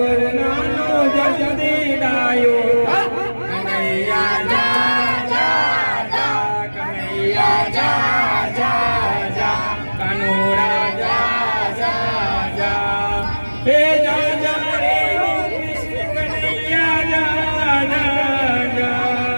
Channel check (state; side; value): inverted; both; correlation -1.00